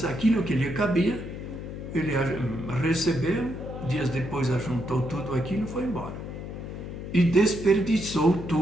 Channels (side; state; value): left; noise; hum, 8 dB below the sound